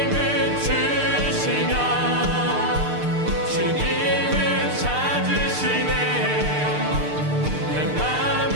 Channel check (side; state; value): left; late; 6.7 ms